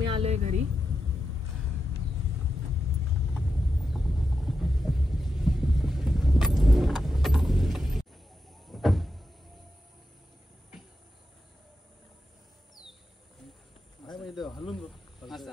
आलोय घरी. हलून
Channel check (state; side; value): normal; both; correlation 0.87